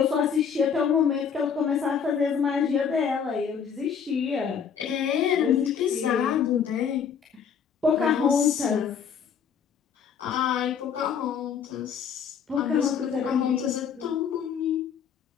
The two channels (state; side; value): quieter; right; 7.2 dB